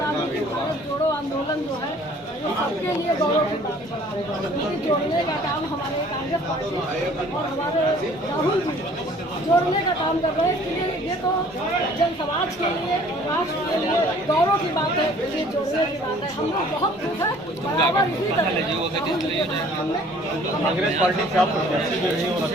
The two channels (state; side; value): normal; both; correlation 0.54